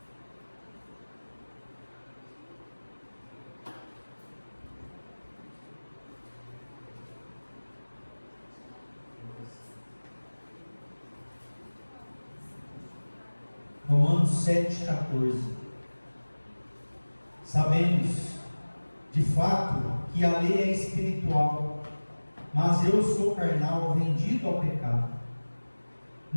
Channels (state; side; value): inverted; both; correlation -1.00